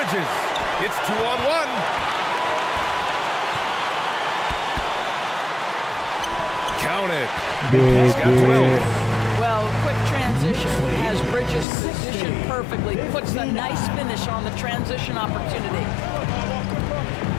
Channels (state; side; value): drops out; right; at 11.7 s